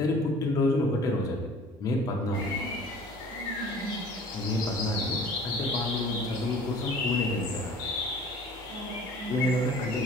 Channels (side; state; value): both; normal; correlation 0.47